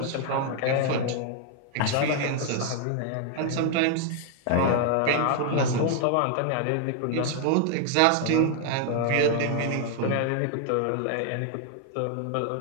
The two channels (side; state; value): both; different; correlation 0.00